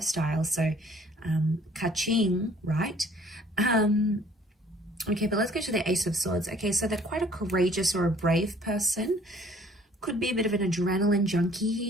so ka-ching, right? Okay, but let's go to the Ace of Swords. Okay, so they're quite a courageous or a brave person. Could be a bit of an adrenaline junkie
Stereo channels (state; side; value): normal; both; correlation 0.57